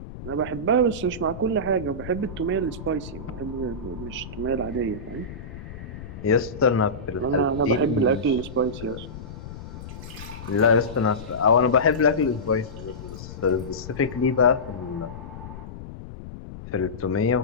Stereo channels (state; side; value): noise; left; rumble, 12 dB below the sound